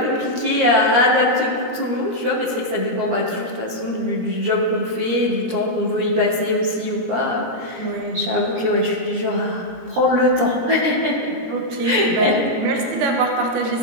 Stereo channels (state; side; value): late; left; 17 ms